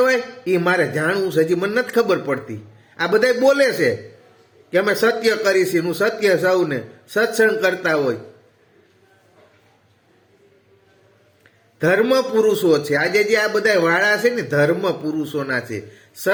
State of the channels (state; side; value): identical; both; correlation 1.00